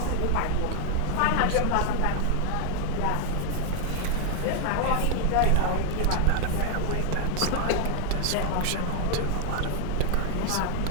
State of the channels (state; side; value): different; both; correlation 0.00